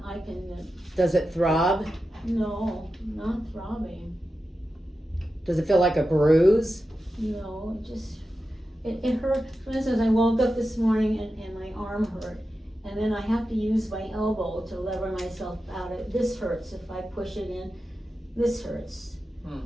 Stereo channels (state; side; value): normal; both; correlation 0.91